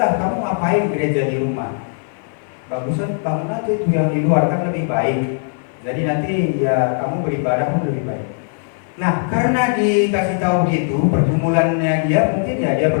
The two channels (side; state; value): right; silent; 56 dB below the other